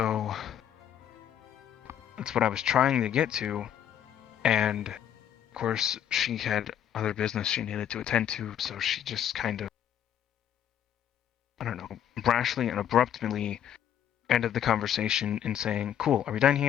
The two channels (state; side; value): quieter; right; 10.0 dB